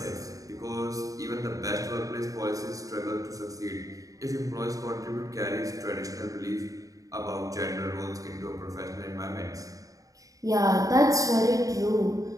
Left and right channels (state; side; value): late; left; 0.17 ms